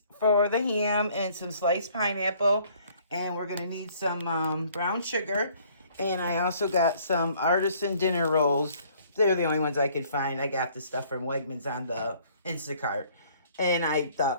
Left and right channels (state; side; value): inverted; both; correlation -0.59